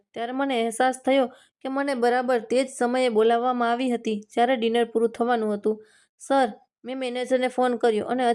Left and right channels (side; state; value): both; identical; correlation 1.00